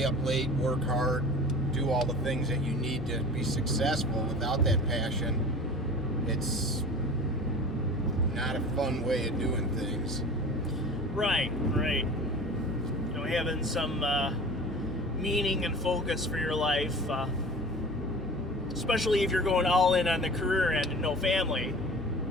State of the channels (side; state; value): both; normal; correlation 0.39